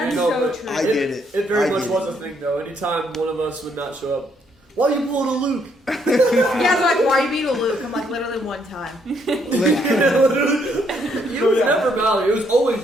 You know, so but true. I get it. It very I much get was a thing though. Anytime one of us would not show up, why you pulling a Luke? Yeah, they're like, why are you being a Luke? I'm like, literally one time. It was never Mallory. It was always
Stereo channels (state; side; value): normal; both; correlation 0.71